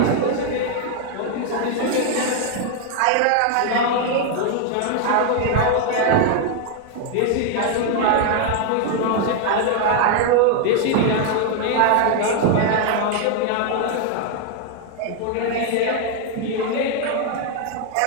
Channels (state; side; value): different; both; correlation 0.00